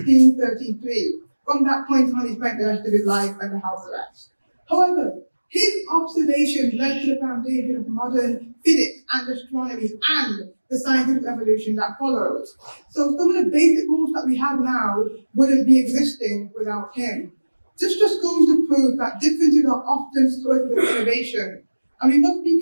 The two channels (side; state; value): both; inverted; correlation -1.00